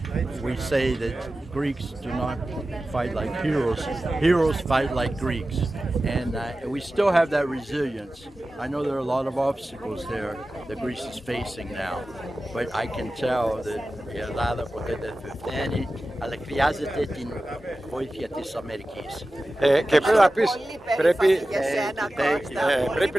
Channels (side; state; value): both; normal; correlation 0.95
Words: we say that Greeks do not fight like heroes. Heroes fight like Greeks. And we still have that resilience. I know there are a lot of obstacles there that Greece is facing now. But I can tell that η Ελλάδα ποτέ δεν θα φταίνει, αλλά χρειάζεται την βοήθεια της Αμερικής. Και πρέπει να πεις,